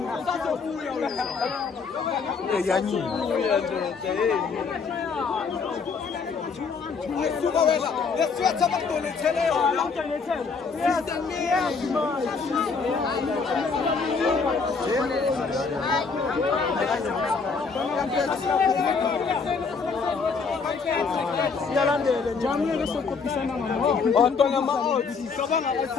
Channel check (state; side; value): quieter; right; 5.1 dB